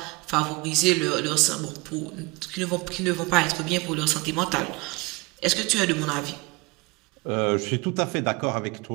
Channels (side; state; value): left; quieter; 24.8 dB